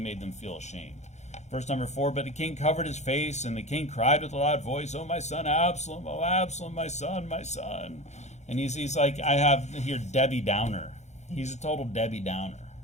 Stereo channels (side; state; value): right; late; 0.33 ms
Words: them feel ashamed. Verse number 4, but the king covered his face, and the king cried with a loud voice, oh, my son Absalom, oh, Absalom, my son, my son. And he's like, I have here Debbie Downer. He's a total Debbie Downer,